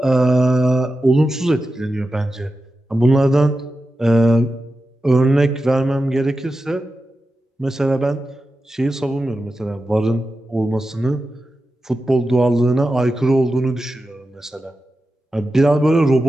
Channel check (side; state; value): both; normal; correlation 0.91